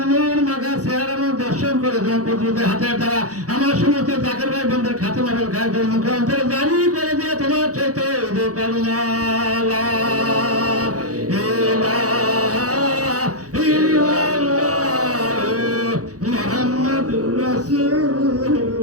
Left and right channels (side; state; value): left; late; 0.67 ms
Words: নূর মাখা চেহারা দর্শন করে তোমার প্রতিনিধি হাতের দ্বারা আমার সমস্ত জাকের ভাই বন্ধুর খাতে মাবেল খায় করে মুখান্তরে জানি করে দিয়ে তোমার চাইতে করুণা